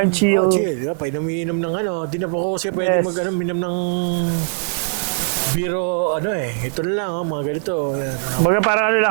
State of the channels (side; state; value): left; silent; digital silence